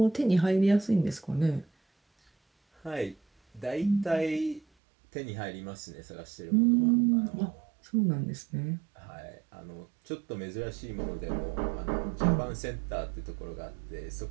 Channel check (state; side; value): drops out; left; at 4.7 s